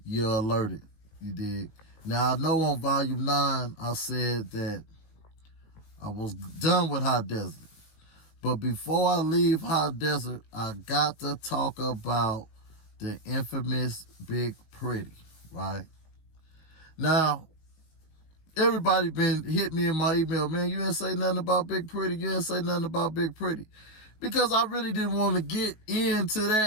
you're alerted. You dig? Now, I know on Volume 9, I said that I was done with Hot Desert. But before I leave Hot Desert, I got to talk about the infamous Big Pretty, right? Now, everybody been hit me in my email, man, you didn't say nothing about Big Pretty. You didn't say nothing about Big Pretty. Because I really didn't want to get into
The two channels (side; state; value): right; late; 19 ms